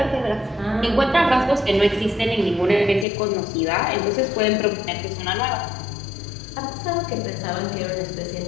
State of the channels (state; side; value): drops out; right; at 3.1 s